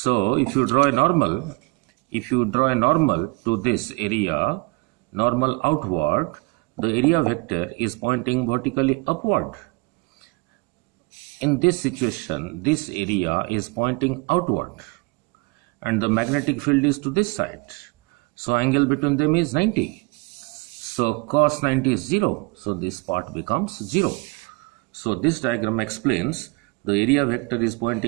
if you draw a normal to this area, normal outward, the area vector is pointing vertically upward. In this situation, this area is pointing outward and the magnetic field is to this side. So angle between them is 90. So cos 90 is 0. So this part becomes 0. So this diagram explains the area vector is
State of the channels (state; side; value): quieter; left; 27.2 dB